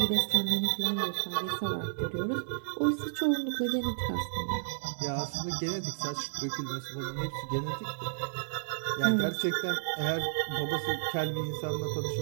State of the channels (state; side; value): silent; left; digital silence